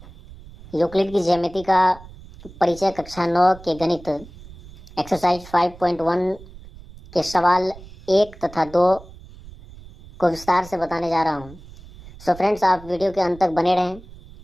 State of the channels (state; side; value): noise; right; rumble, 19 dB below the sound